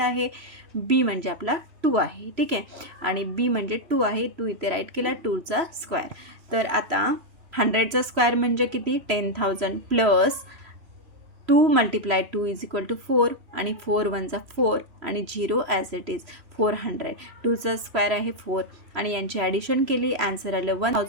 बी म्हणजे आपला 2 आहे. ठीक आहे. आणि बी म्हणजे 2 आहे, 2 इथे राईट केला, 2चा स्क्वेअर. तर आता 100चा स्क्वेअर म्हणजे किती, 10,000 plus 2 multiply 2 is equal to 4 आणि 4 1 4 आणि 0 ॲज इट इज 400. 2चा स्क्वेअर आहे 4 आणि यांची ॲडिशन केली, आन्सर आलं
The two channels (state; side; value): late; left; 3.0 ms